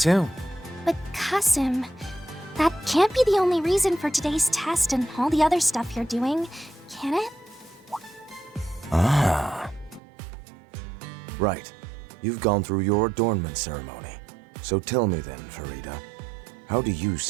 But Qasim, that can't be the only reason for today's test and all the other stuff you're doing, can it? Ah. Right. You've gone through your adornment ceremony. So tell me then, Farida, how do you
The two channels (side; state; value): left; drops out; at 10.0 s